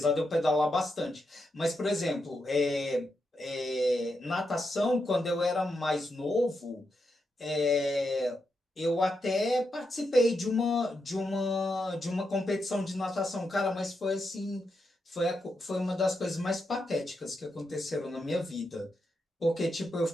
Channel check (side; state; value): both; normal; correlation 0.84